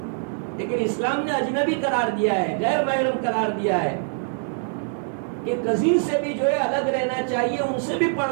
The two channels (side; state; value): left; silent; digital silence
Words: لیکن اسلام نے اجنبی قرار دیا ہے، غیر محرم قرار دیا ہے کہ کزن سے بھی جو ہے الگ رہنا چاہیے، ان سے بھی